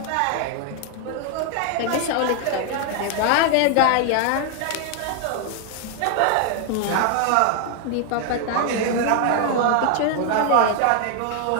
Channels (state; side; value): different; both; correlation 0.00